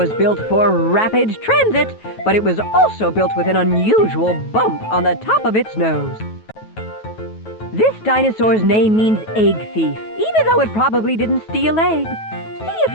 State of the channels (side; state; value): right; late; 9.2 ms